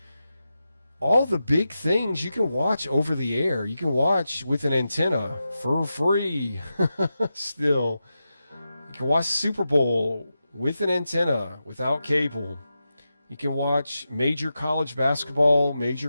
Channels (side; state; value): both; inverted; correlation -0.91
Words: all the big things you can watch over the air. You can watch with an antenna for free. Still, you can watch Super Bowl with an antenna without cable. You can watch major college basketball,